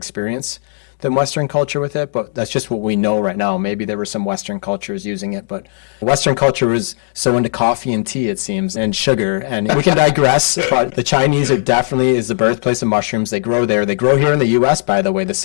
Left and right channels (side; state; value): right; silent; digital silence